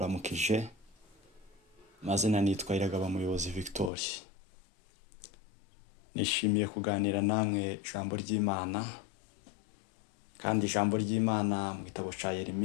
Mazina nitwa Iragaba Muyobozi Victor. Nishimiye kuganira namwe ijambo ry'Imana. Kandi ijambo ry'Imana mu gitabo cya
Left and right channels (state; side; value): drops out; right; at 3.9 s